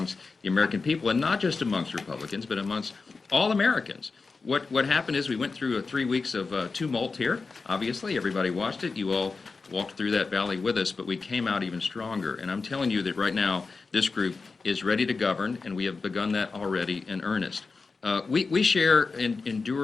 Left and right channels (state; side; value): quieter; right; 4.3 dB